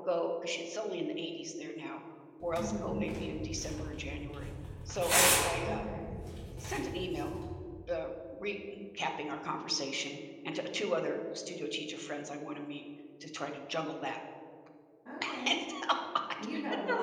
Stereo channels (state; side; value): identical; both; correlation 1.00